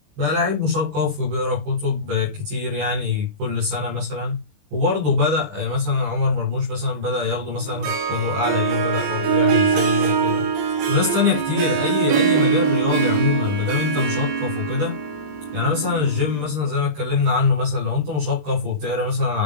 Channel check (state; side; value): late; left; 20 ms